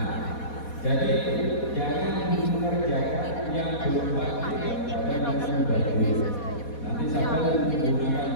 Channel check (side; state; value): right; late; 4.2 ms